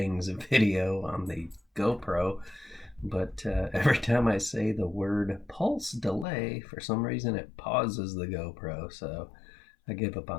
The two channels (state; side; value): drops out; right; at 6.2 s